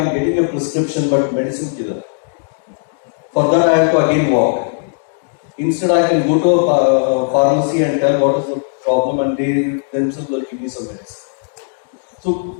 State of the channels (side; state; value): right; silent; digital silence